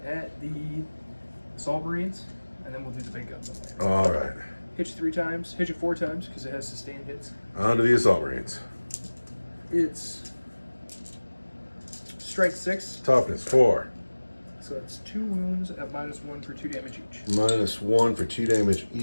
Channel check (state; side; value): inverted; both; correlation -1.00